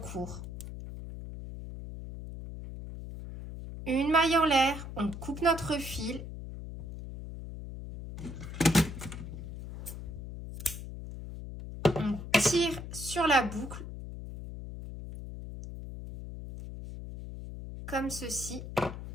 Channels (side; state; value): left; noise; hum, 9 dB below the sound